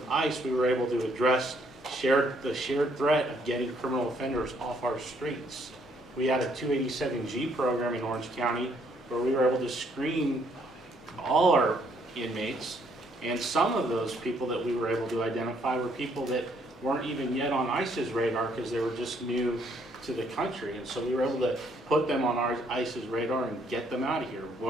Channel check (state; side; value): normal; both; correlation 0.68